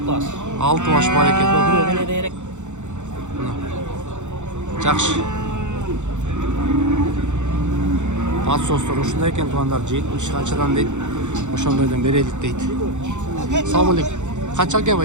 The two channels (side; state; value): left; late; 0.84 ms